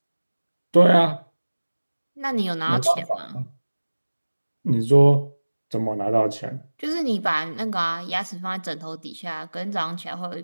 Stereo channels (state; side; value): inverted; both; correlation -1.00